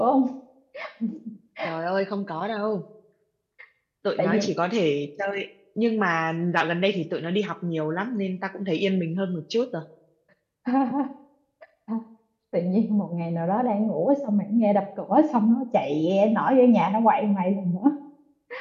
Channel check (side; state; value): both; identical; correlation 1.00